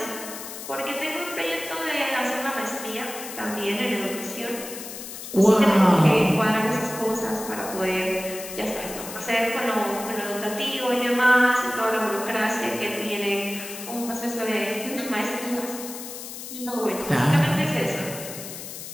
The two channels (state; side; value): noise; left; hiss, 10 dB below the sound